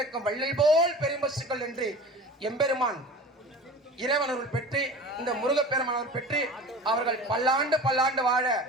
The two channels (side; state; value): both; normal; correlation 0.37